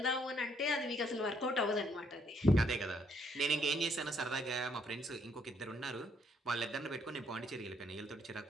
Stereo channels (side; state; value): both; normal; correlation 0.70